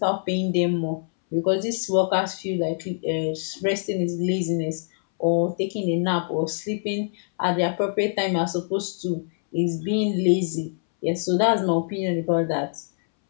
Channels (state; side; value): silent; right; 62 dB below the other